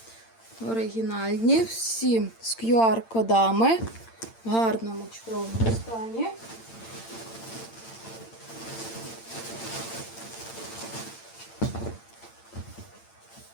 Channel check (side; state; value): right; late; 8.8 ms